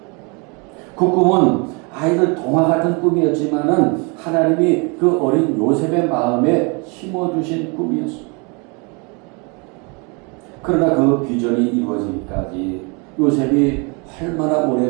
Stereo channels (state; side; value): quieter; left; 31.8 dB